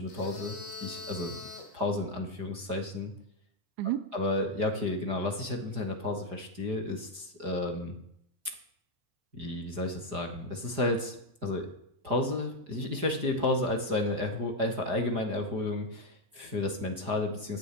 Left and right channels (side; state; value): left; late; 4.9 ms